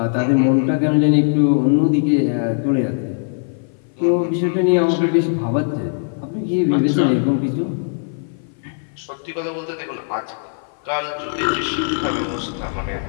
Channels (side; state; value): right; silent; 57 dB below the other